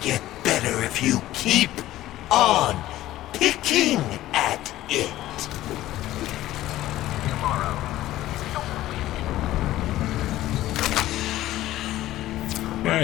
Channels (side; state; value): right; quieter; 15.0 dB